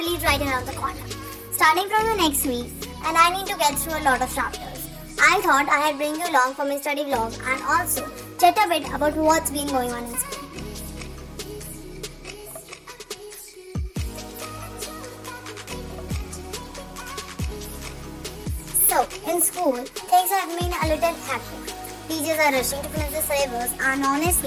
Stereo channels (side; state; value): both; identical; correlation 1.00